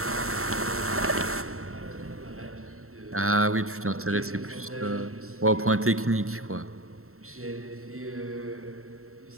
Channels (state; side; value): late; left; 0.63 ms